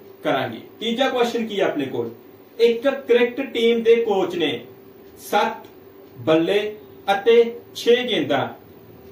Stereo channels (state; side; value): identical; both; correlation 1.00